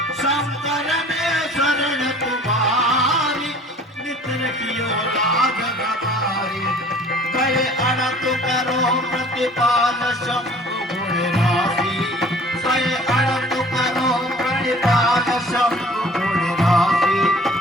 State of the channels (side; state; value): both; normal; correlation 0.50